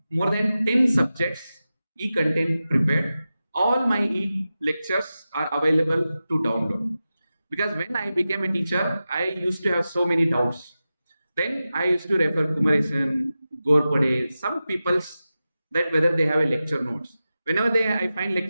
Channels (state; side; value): inverted; both; correlation -0.93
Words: more than 10 subjects, e-content prepared. All my e-lectures are available to download. Because when I became a teacher, I used to have so many doubts. Then I used to refer Kumaresan, Gorpade, some people's that whether they have a lecture notes. Whenever I find